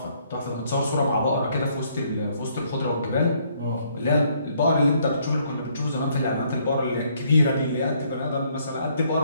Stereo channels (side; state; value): both; inverted; correlation -0.68